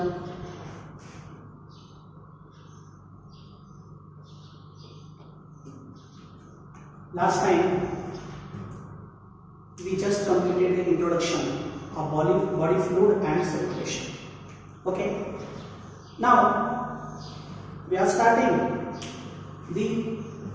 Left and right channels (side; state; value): both; identical; correlation 1.00